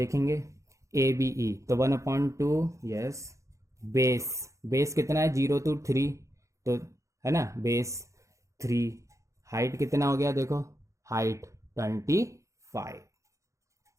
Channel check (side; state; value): left; late; 0.15 ms